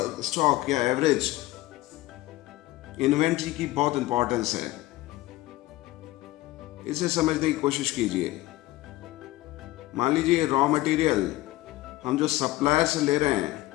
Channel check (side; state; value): right; quieter; 17.9 dB